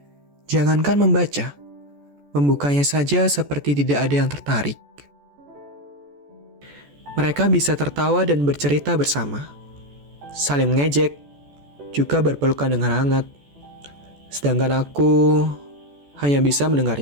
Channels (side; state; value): left; late; 14 ms